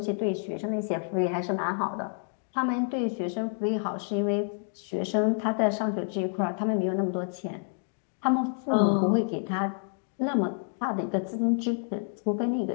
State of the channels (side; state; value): right; silent; 59 dB below the other